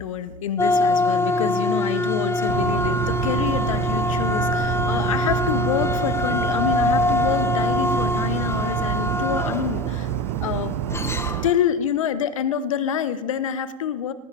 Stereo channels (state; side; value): normal; both; correlation 0.32